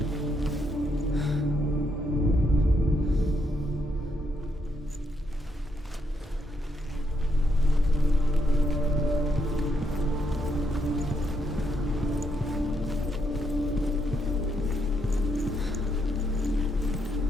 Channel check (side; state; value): both; normal; correlation 0.77